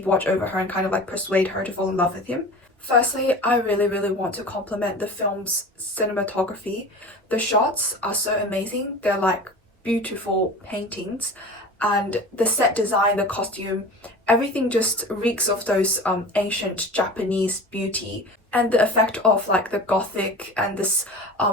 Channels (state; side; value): normal; both; correlation 0.36